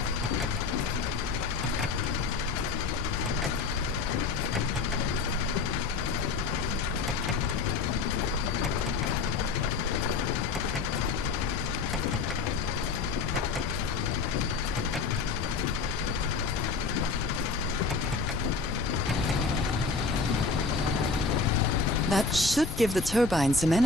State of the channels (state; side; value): quieter; right; 4.3 dB